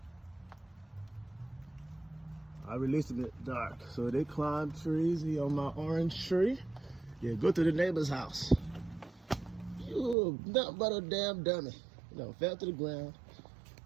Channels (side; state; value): left; drops out; at 10.2 s